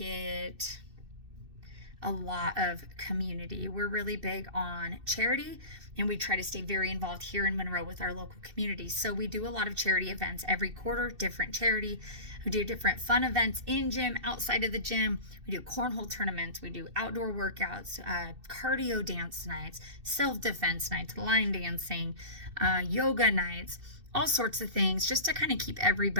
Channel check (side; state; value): left; late; 2.6 ms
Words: a lot of community. We're really big on charity, and we try to stay very involved here in Monroe with our local community. So we do a lot of charity events every quarter, different charity. We do different fun events in gym, outside of the gym. We do cornhole tournaments. We do outdoor workouts, cardio dance nights, self-defense nights, line dancing, yoga nights, all sorts of things, just to kind of keep